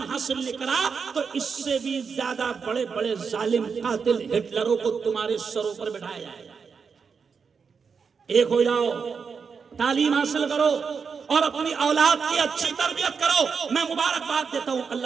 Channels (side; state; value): left; quieter; 5.8 dB